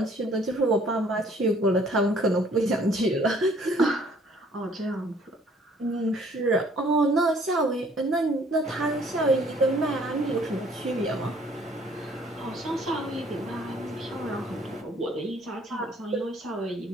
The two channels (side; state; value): both; normal; correlation 0.59